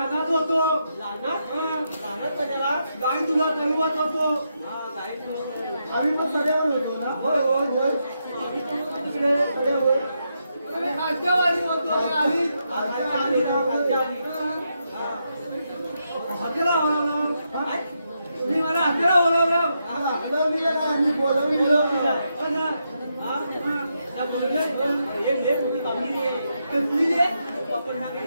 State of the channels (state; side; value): inverted; both; correlation -0.83